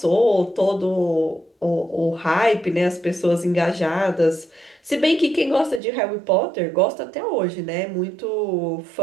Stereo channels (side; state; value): left; drops out; at 5.8 s